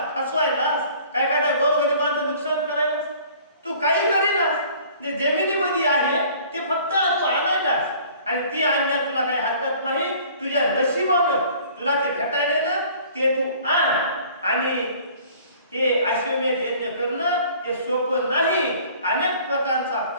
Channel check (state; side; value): inverted; both; correlation -0.51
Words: फसवायलास काय काय, गोरगरिबांचं नुकसान करायलास. तू काही करीनास, जे जमिनीमध्ये आहे ते फक्त तू आणायलास आणि ती आणण्यात तुला काही हरकत नाही. तुझ्या नशिबानं तुला ते भेटायला ना ते तू आण. आणि हे अश्वमेध यज्ञ करणं हे सोपं नाही. अनेक प्रकारचा